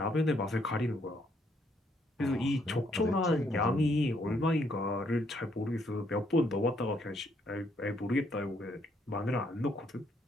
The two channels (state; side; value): normal; both; correlation 0.71